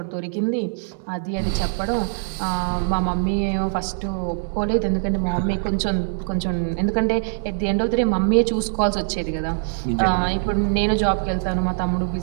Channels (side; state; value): left; silent; digital silence